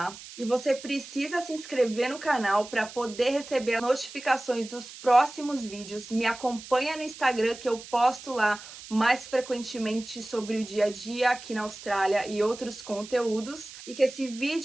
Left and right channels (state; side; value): noise; right; hiss, 15 dB below the sound